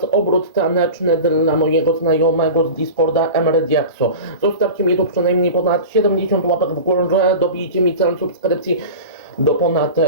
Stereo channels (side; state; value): both; inverted; correlation -0.32